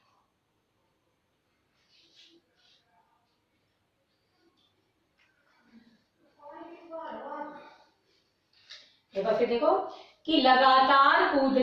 एक बार फिर देखो, कि लगातार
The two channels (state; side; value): identical; both; correlation 1.00